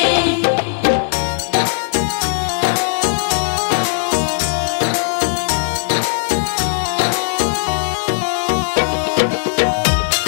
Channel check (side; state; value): right; silent; digital silence